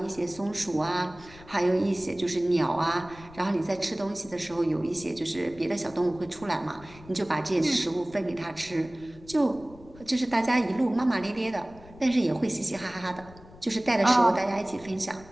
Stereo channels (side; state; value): left; noise; rumble, 21 dB below the sound